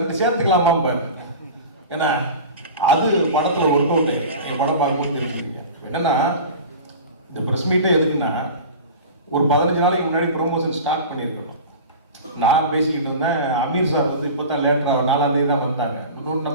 சேர்த்துக்கலாமா பாரு. ஏன்னா அது படத்தில் ஒர்க் அவுட். என் படம் பார்க்கும்போது தெரிஞ்சுக்கிங்க. என்னன்னா இந்த ப்ரெஸ் மீட்டே எதுக்குன்னா ஒரு 15 நாளைக்கு முன்னாடி ப்ரொமோஷன் ஸ்டார்ட் பண்ணியிருக்கணும். நான் பேசிக்கிட்டு இருந்தேன். அமீர் சார் வந்து இப்போ தான் லேட்டராக 4ஆம் தேதி தான் வந்தாங்க.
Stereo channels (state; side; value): inverted; both; correlation -0.34